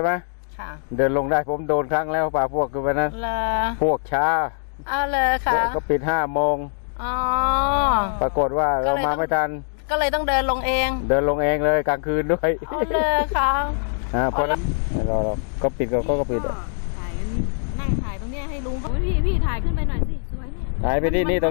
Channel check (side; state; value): right; silent; digital silence